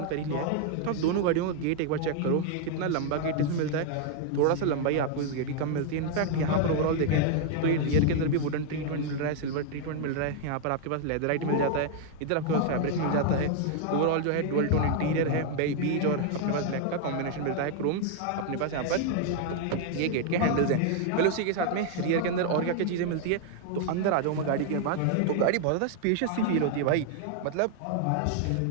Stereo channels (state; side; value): different; both; correlation 0.00